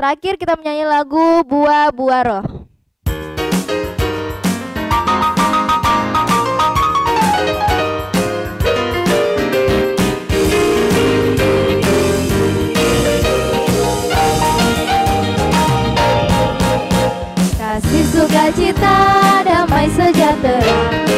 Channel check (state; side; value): identical; both; correlation 1.00